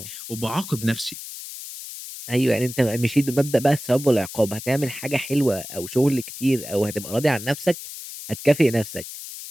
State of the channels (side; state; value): left; noise; hiss, 11 dB below the sound